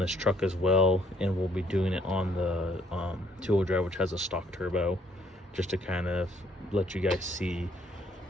truck as well, and we'll be doing it on the 2-wheel drive, which has a stock turbo, just to kind of let you guys see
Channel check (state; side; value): normal; both; correlation 0.66